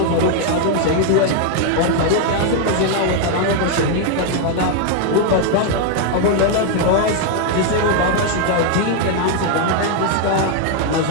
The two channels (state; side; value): different; both; correlation 0.01